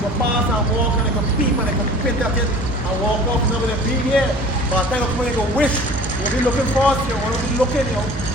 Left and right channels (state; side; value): normal; both; correlation 0.44